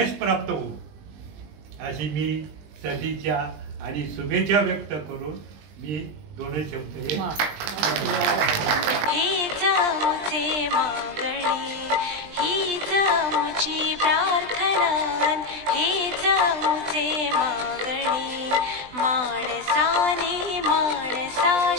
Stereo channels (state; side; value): late; left; 20 ms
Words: प्राप्त होऊ अशी मी सदिच्छा आणि शुभेच्छा व्यक्त करून मी 2 शब्द हीच आमचे मागणी, हीच आमची प्रार्थना, हीच आमचे मागणी. माणसाने